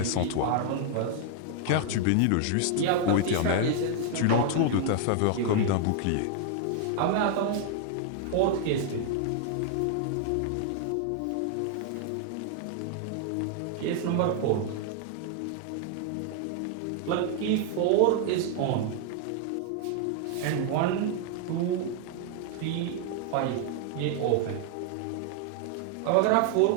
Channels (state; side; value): different; both; correlation 0.00